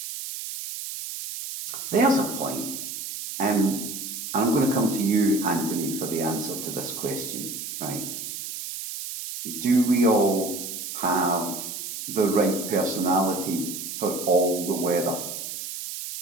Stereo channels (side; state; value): right; noise; hiss, 7 dB below the sound